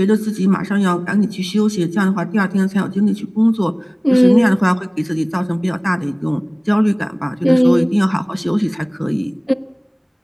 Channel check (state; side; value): identical; both; correlation 1.00